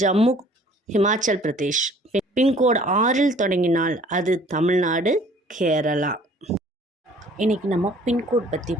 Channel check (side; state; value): both; normal; correlation 0.54